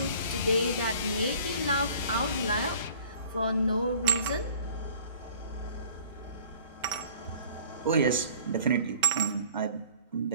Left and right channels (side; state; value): both; inverted; correlation -0.49